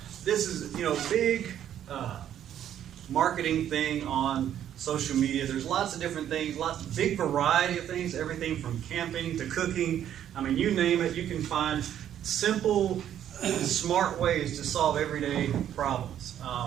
this is, a big marketing thing on social media. There's lots of different things, big variety of things, everything from camping to cooking. I mean, you name it, you can find simple, smart ways to solve everyday problems.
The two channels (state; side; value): quieter; left; 10.5 dB